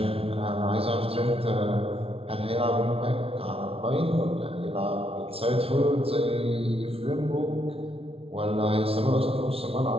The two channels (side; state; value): left; late; 0.27 ms